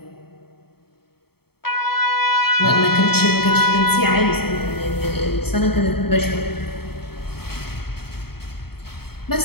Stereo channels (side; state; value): right; late; 0.96 ms